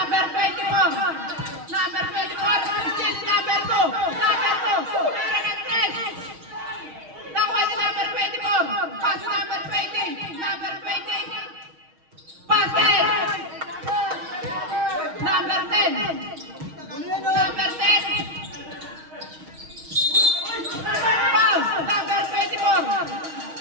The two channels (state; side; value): late; left; 6.4 ms